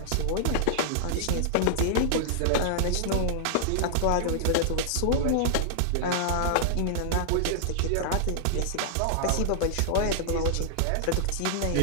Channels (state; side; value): different; both; correlation -0.01